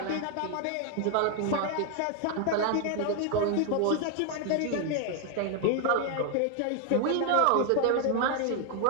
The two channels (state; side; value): different; both; correlation 0.00